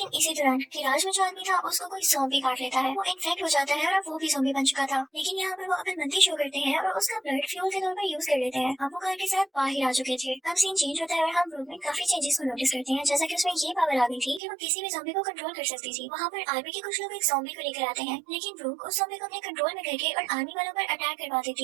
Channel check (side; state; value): left; drops out; at 14.4 s